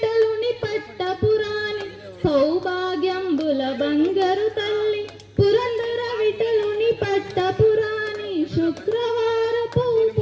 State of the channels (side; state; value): both; identical; correlation 1.00